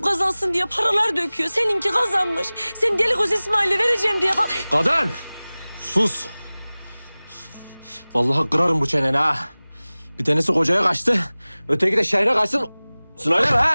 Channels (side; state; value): both; inverted; correlation -0.99